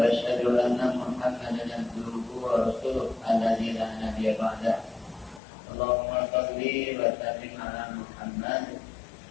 asyhadu anna Muhammadan abduhu wa rasuluh alladzi la nabiyya ba'dahu. Allahumma shalli wa sallim ala Muhammad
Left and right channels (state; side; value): drops out; right; at 5.4 s